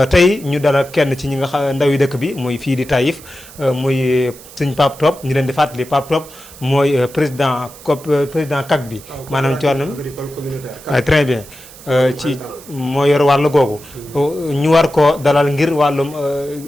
tey ñu dalal kenn ci ñi nga xam ndaw yi dëkk bi muy fii di Taïf muy sëñ Pape Top ñu leen di fàttali Pape Top mooy président CAC bi maanaam ci wàllum très bien ci moo yor wàllu googu ñu war ko dalal ngir wàllum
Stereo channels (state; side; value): noise; right; hiss, 19 dB below the sound